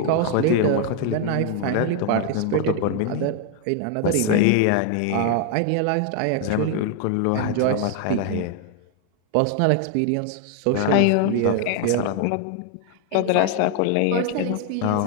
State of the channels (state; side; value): different; both; correlation 0.01